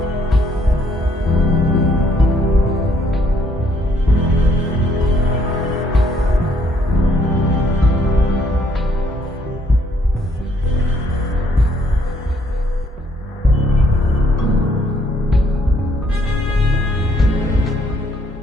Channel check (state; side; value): normal; both; correlation 0.67